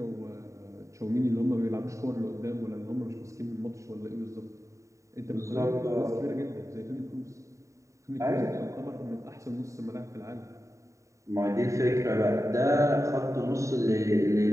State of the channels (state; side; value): late; left; 0.15 ms